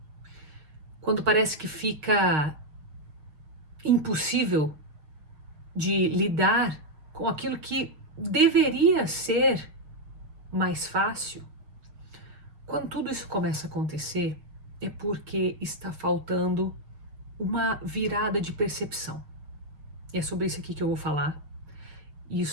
quando parece que fica impossível de lidar com aquilo que deveria ser mais fácil, quando tudo isso começa a acontecer, é porque está faltando uma virada de percepção. E é sobre isso aqui que eu vou falar.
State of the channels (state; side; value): late; left; 6.5 ms